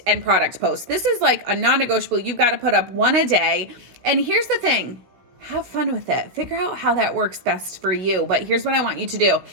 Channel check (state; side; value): late; left; 16 ms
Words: and product post. This is a non-negotiable. You've got to put up one a day. And here's the thing. Have fun with it. Figure out how that works best for you. But here's what I want you to do.